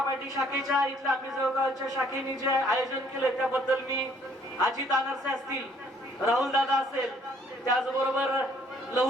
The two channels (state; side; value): normal; both; correlation 0.62